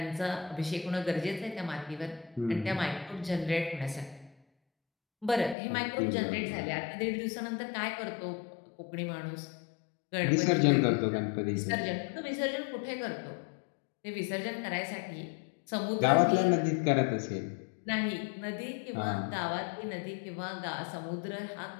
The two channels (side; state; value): right; drops out; at 5.6 s